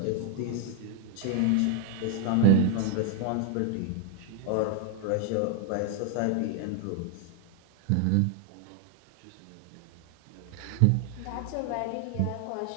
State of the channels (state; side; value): different; both; correlation 0.00